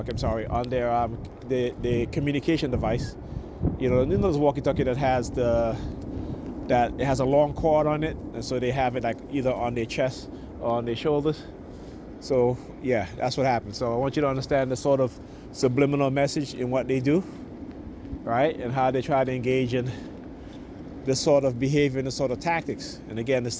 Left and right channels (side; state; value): both; identical; correlation 1.00